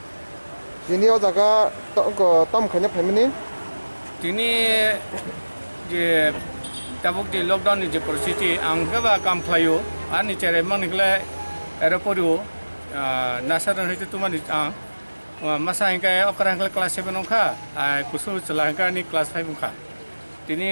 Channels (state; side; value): inverted; both; correlation -1.00